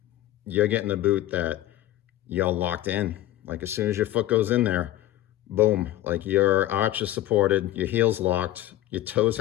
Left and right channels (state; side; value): quieter; right; 14.3 dB